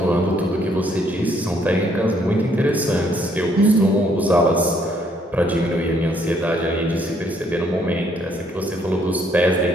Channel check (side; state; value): both; normal; correlation 0.68